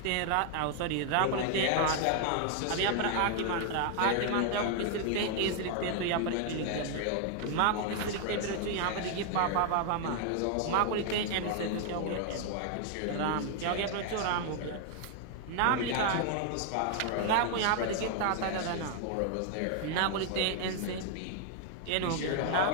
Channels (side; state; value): both; different; correlation 0.00